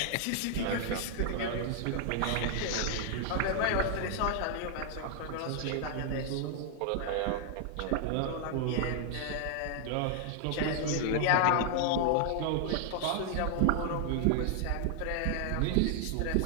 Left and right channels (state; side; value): different; both; correlation 0.00